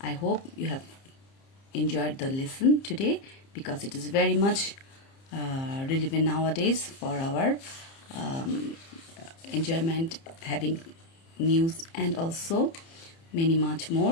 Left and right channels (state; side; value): late; right; 30 ms